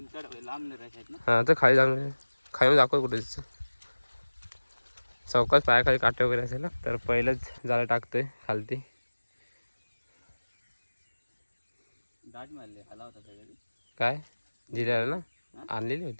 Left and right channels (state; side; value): inverted; both; correlation -1.00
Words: हां तर खाली जाऊन खाली दाखव कुठे चौकात पायाखाली काटे वगैरे असेल ना. तर पहिलंच जाळं टाकतोय खालती. काय जिऱ्याला ना आणलेली